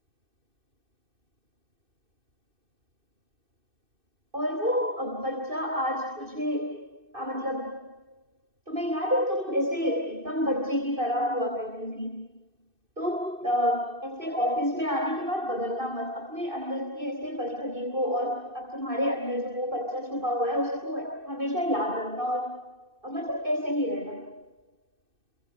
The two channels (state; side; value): late; left; 2.6 ms